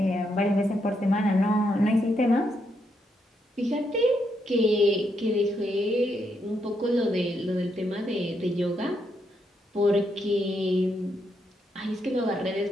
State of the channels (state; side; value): normal; both; correlation 0.79